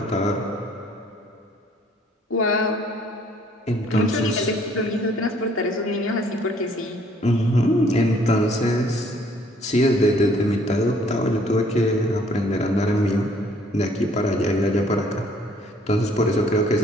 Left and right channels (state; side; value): normal; both; correlation 0.61